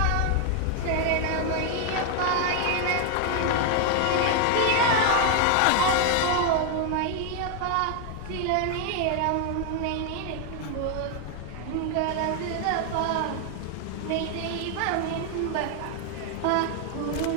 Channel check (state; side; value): different; both; correlation 0.00